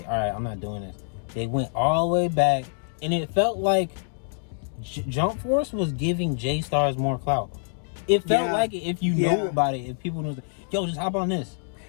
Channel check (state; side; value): silent; right; digital silence